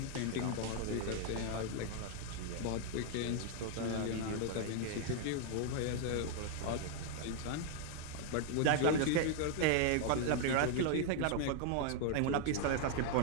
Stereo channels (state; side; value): different; both; correlation 0.00